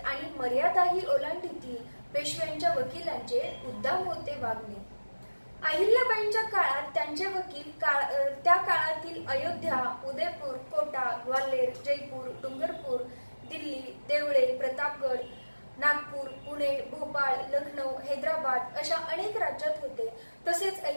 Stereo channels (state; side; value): inverted; both; correlation -1.00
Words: आणि मर्यादाही ओलांडीती पेशव्यांच्या वकिलांचे उद्दाम होते वागणे. अहिल्याबाईंच्या काळात त्यांचे वकील त्या काळातील अयोध्या, उदयपूर, कोटा, ग्वाल्हेर, जयपूर, डुंगरपूर, दिल्ली, देवळे, प्रतापगड, नागपूर, पुणे, भोपाळ, लखनौ, हैदराबाद अशा अनेक राज्यात होते. तसेच